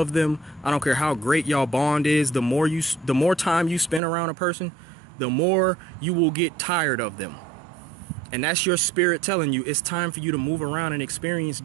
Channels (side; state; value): left; drops out; at 4.0 s